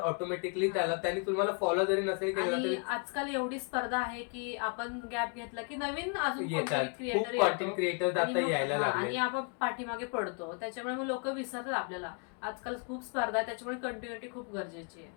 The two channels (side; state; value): right; quieter; 36.2 dB